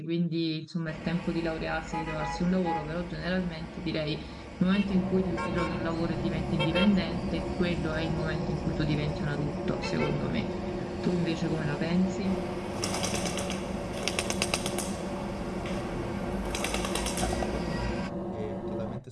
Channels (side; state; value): both; identical; correlation 1.00